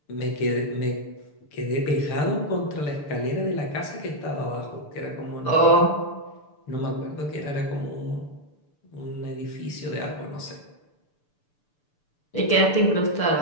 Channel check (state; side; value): late; right; 6.8 ms